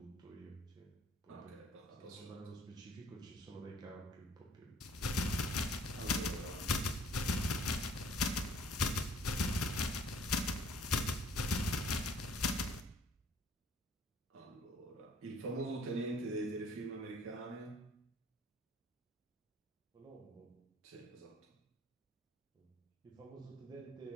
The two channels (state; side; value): normal; both; correlation 0.57